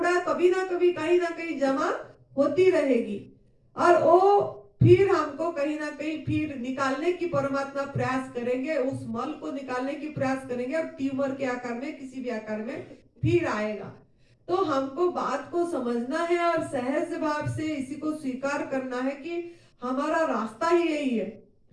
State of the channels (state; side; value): identical; both; correlation 1.00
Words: कभी ना कभी कहीं ना कहीं जमा होती रहेगी, और वो फिर हमको कहीं ना कहीं फिर निकालने की परमात्मा प्रयास करेंगे, उस मल को निकालने की प्रयास करेंगे, और ट्यूमर के आकार में, किसी भी आकार में फिर आएगा। तो हमको बात को समझना है और सहज भाव से इसी को स्वीकार करना है कि हमारा रास्ता ही यही है।